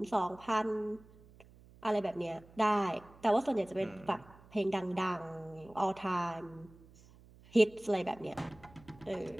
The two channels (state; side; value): noise; right; hum, 24 dB below the sound